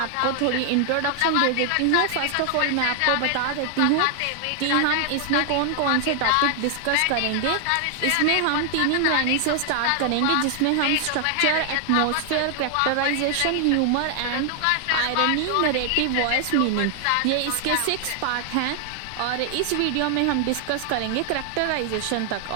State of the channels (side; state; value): both; different; correlation 0.00